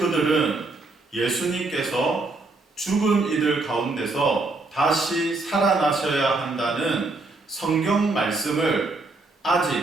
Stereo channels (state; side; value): quieter; left; 3.3 dB